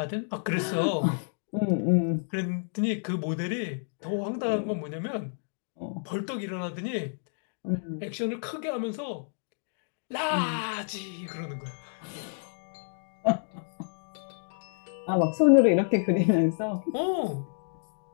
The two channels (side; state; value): right; silent; digital silence